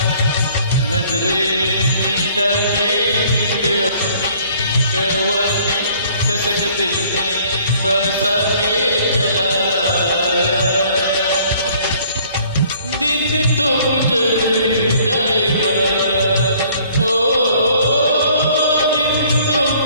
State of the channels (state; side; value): inverted; both; correlation -0.58